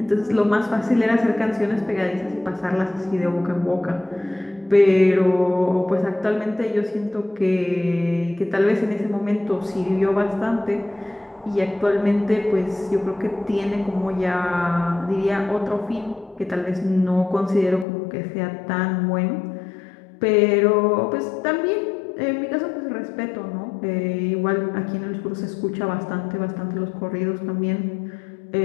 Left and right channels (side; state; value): right; drops out; at 17.9 s